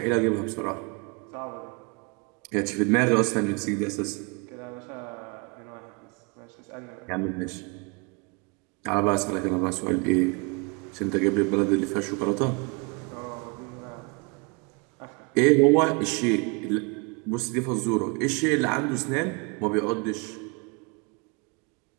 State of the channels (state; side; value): quieter; left; 31.0 dB